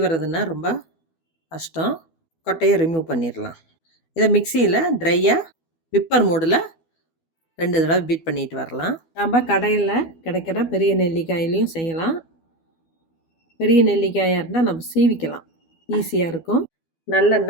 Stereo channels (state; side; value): late; right; 12 ms